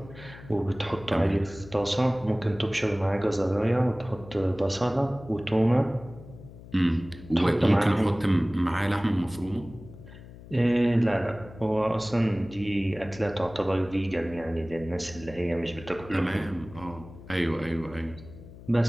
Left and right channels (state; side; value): noise; left; hum, 17 dB below the sound